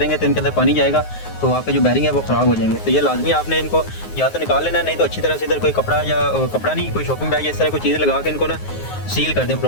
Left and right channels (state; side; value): late; right; 9.5 ms